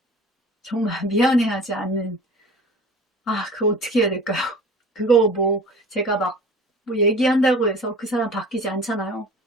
정말 미안해하지 않는, 그거 어떻게 해야 될까요? 그거 뭐 제가 막 뭐 얘기한다고 해서 그 사람 바뀌지 않잖아요.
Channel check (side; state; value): both; normal; correlation 0.42